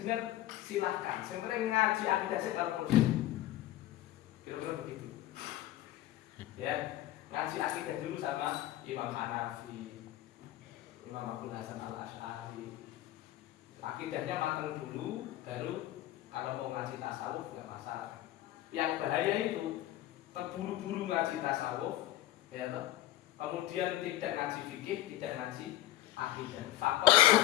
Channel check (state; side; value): quieter; right; 14.6 dB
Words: silahkan. Sebenarnya ngaji akidah sih kalau perlu. Kira-kira begitu. Ya, ngaji akidah dulu sama Imam Hanafi, Imam Abdul Hasan Al-Asy'ari. Akidahnya matang dulu, baru kalau mau ngaji tasawuf nggak masalah. Yang bahaya itu terburu-buru ngaji tasawuf, ya toh. Kemudian tidak ngaji fikih, tidak ngaji akidah. Fakot